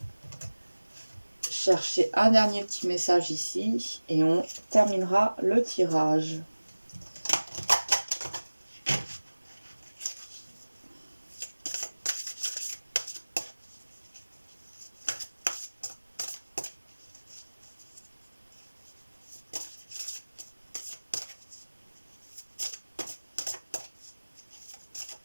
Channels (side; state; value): both; inverted; correlation -1.00